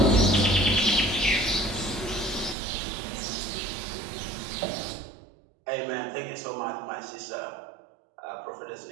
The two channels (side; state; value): left; drops out; at 2.6 s